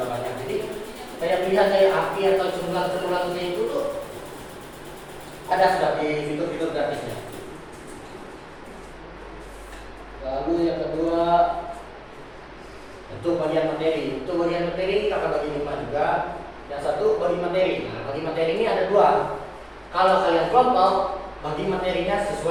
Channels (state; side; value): identical; both; correlation 1.00